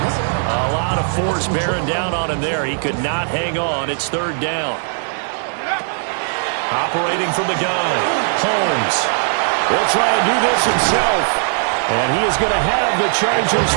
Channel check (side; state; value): left; silent; digital silence